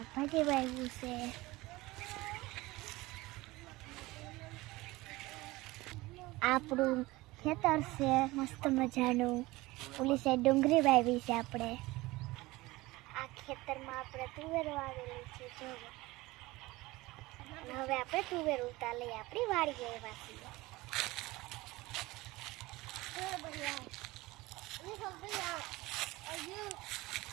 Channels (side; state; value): left; quieter; 20.4 dB